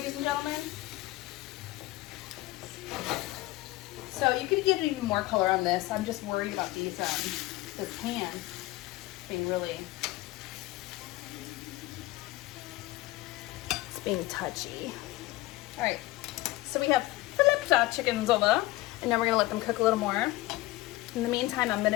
and gentlemen. So you could get even more color on this. I'm just worried about these, this pan being really, it's being touchy. All right, so we have flipped our chickens over, and now we're gonna let them cook a little more. In the meantime, I'm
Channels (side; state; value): right; quieter; 18.6 dB